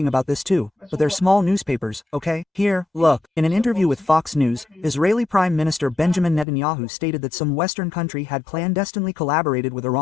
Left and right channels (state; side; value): drops out; right; at 6.5 s